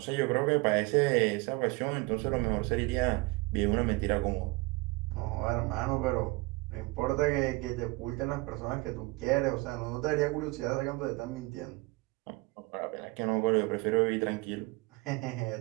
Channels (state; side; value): quieter; left; 24.6 dB